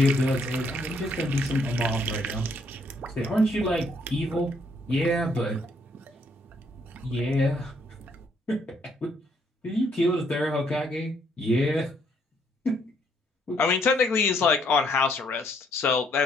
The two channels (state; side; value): normal; both; correlation 0.70